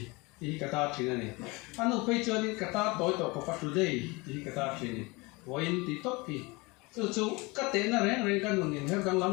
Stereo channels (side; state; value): right; quieter; 25.3 dB